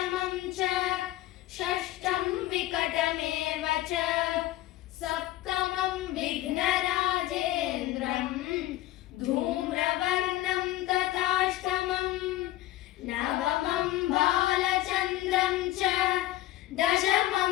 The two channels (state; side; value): quieter; right; 15.7 dB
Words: च षष्ठं विकटमेव च सप्तमं विघ्नराजेन्द्रं धूम्रवर्णं तथाष्टमं नवमं बालचन्द्रं च दशमं